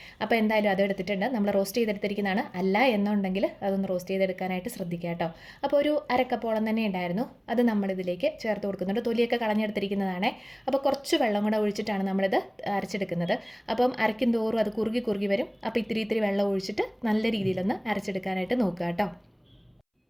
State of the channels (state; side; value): identical; both; correlation 1.00